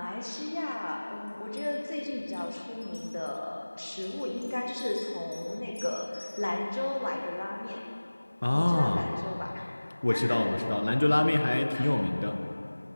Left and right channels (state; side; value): inverted; both; correlation -1.00